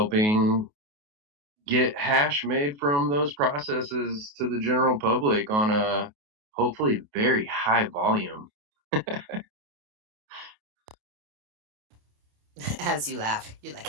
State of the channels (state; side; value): late; left; 28 ms